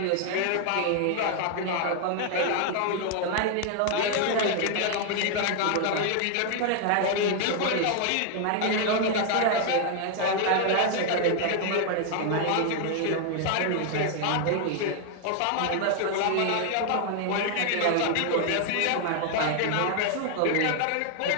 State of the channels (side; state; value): both; different; correlation 0.00